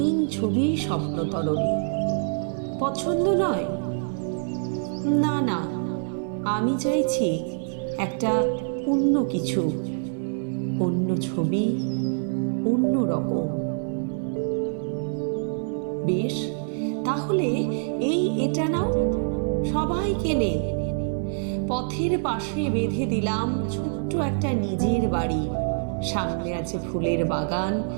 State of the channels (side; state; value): left; silent; 57 dB below the other